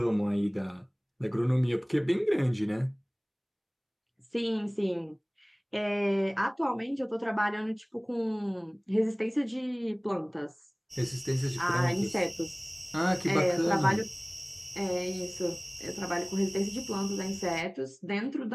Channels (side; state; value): both; identical; correlation 1.00